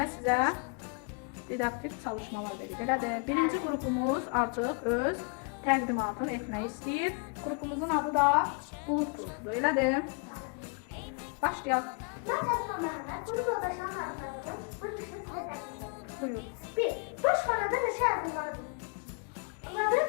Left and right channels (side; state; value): right; quieter; 36.2 dB